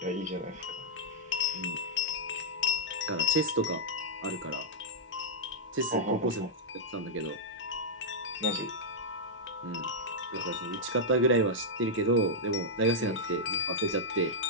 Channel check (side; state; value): both; normal; correlation -0.06